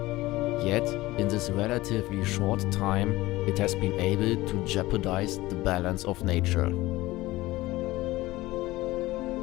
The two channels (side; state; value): right; quieter; 18.6 dB